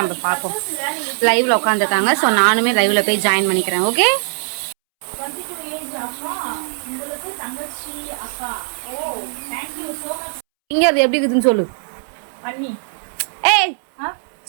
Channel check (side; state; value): left; silent; 66 dB below the other